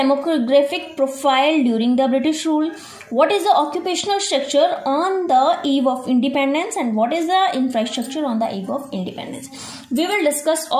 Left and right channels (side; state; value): both; identical; correlation 1.00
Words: profile during the British rule, what is the occupational structure on the eve of independence, and what is the infrastructure on the eve of independence. We will discuss